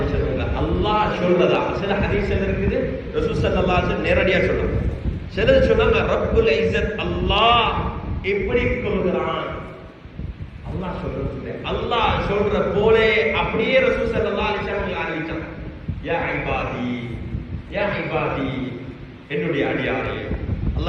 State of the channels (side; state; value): both; identical; correlation 1.00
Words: வஸல்லம் அல்லாஹ் சொல்றதா சில ஹதீஸ்ல இருக்குது, ரசூல் ஸல்லல்லாஹு அலைஹி வஸல்லம் நேரடியா சொல்றாங்க. சிலர் சொன்னாங்க ரப்புல் இஸ்ஸத் அல்லாஹ் எப்படி சொல்கிறான், அல்லாஹ் சொல்றது அல்லாஹ் சொல்ற போலே அப்படியே ரசூல் ஸல்லல்லாஹு அலைஹி வஸல்லம் அறிவிச்சாங்க. யா இபாதி, யா இபாதி, என்னுடைய அடியாரே.